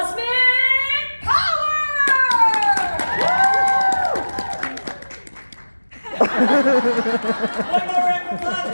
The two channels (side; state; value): both; inverted; correlation -1.00